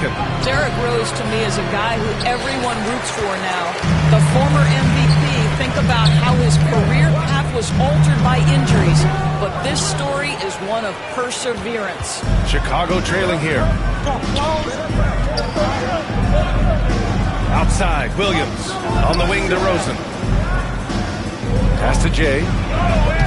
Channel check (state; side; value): identical; both; correlation 1.00